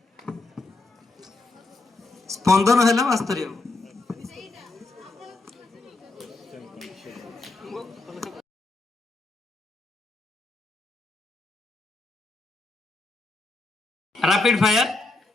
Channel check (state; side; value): quieter; right; 3.3 dB